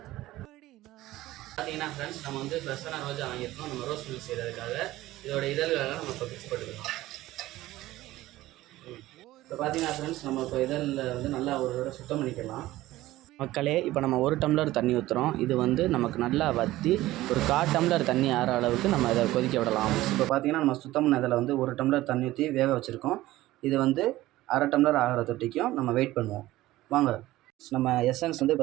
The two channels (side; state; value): left; quieter; 16.6 dB